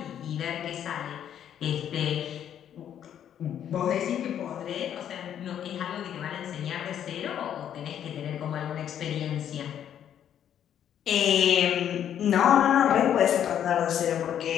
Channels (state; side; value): quieter; right; 9.8 dB